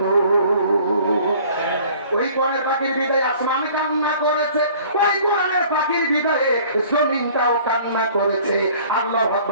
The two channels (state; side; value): inverted; both; correlation -0.51